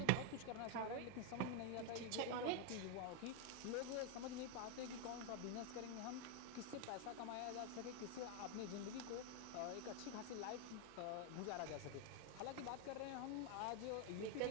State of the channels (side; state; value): both; different; correlation 0.01